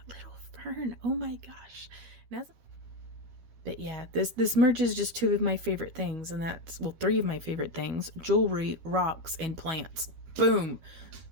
little fern. Oh my gosh. But yeah, this merges just two of my favorite things, and that's, well, three of my favorite things: jewelry, rocks, and plants. Boom.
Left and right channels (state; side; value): late; left; 12 ms